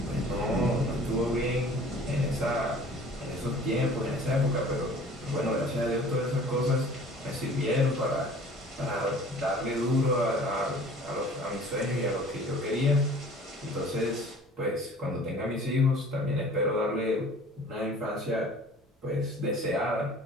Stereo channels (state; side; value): normal; both; correlation 0.48